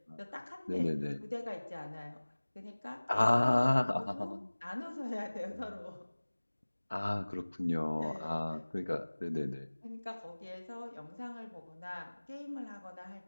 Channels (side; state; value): both; inverted; correlation -1.00